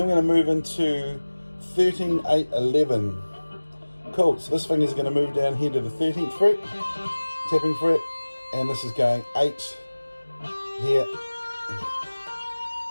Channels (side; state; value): both; inverted; correlation -1.00